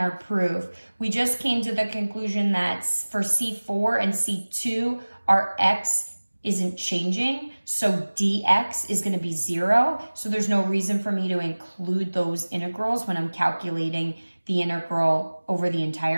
proof, we just came to the conclusion that for C4 and C2, our x isn't changing, so dx is going to be 0. So there's no reason for me to include those integrals when I'm calculating the integral over the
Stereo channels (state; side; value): inverted; both; correlation -1.00